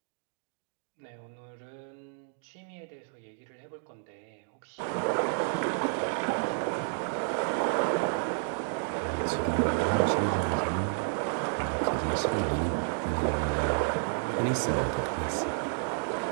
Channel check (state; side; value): silent; left; digital silence